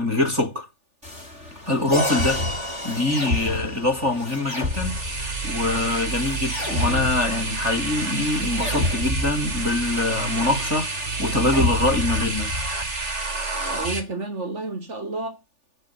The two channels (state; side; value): late; left; 3.4 ms